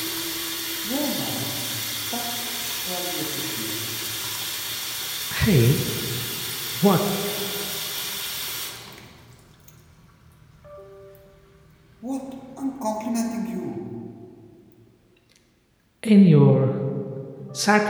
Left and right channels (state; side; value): identical; both; correlation 1.00